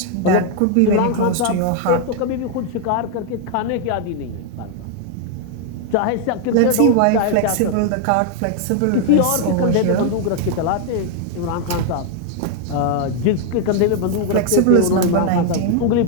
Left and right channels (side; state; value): both; different; correlation 0.00